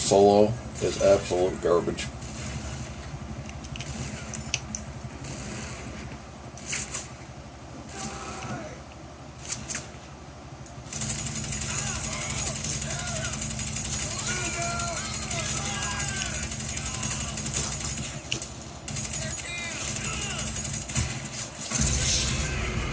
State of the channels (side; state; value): both; identical; correlation 1.00